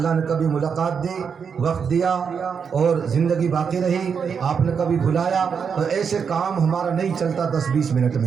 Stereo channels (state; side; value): quieter; left; 6.5 dB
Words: نے کبھی ملاقات دی، وقت دیا اور زندگی باقی رہی، آپ نے کبھی بلایا تو ایسے کام ہمارا نہیں چلتا 10-20 منٹ